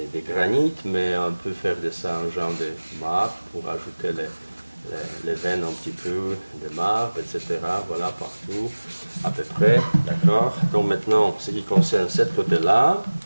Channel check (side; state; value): both; inverted; correlation -1.00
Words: granit, mais on peut faire de ça un genre de marbre pour ajouter les veines un petit peu de marbre, etc. Voilà, partout, à peu près, d'accord. Donc maintenant, ce qui concerne ce côté-là,